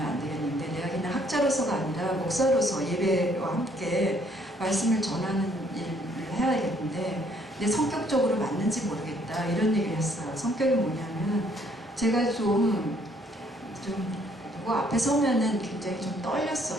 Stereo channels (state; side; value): normal; both; correlation 0.65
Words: 되겠는데 내가 그냥 학자로서가 아니라 목사로서 예배와 함께 말씀을 전하는 일을 해야겠는데 내 성격적으로 맞는지 모르겠다 이런 얘기를 했어요. 성격이 뭐냐면 제가 좀 누구 앞에 서면은 굉장히 좀